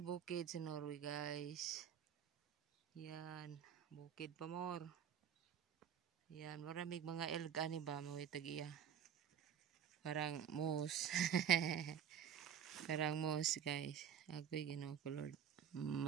bukid sa Norway guys. Yan, bukid pa more. Yan, maraming mga elg ani ba mawitag iya. Parang moose. Parang moose guys. Agoy Ginoo ko Lord.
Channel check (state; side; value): quieter; left; 8.6 dB